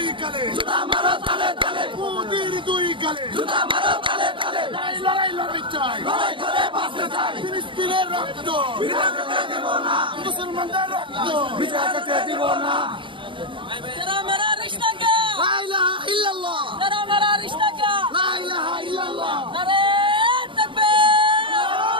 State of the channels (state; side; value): late; left; 0.24 ms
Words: গালে জুতা মারো তালে তালে, মোদির দুই গালে জুতা মারো তালে তালে, লড়াই চাই লড়াই করে বাঁচতে চাই, ফিলিস্তিনের রক্ত বিনা যেতে দেব না, মুসলমানদের রক্ত বিনা যেতে দিব না। तेरा मेरा रिश्ता क्या, লা ইলাহা ইল্লাল্লাহ तेरा मेरा रिश्ता क्या, লা ইলাহা ইল্লাল্লাহ नारे तकबीर।